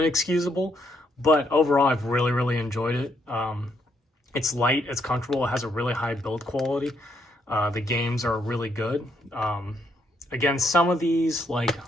But overall, I've really, really enjoyed it. It's light, it's comfortable, it has a really high build quality. The games are really good. Again, some of these, like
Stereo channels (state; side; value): normal; both; correlation 0.74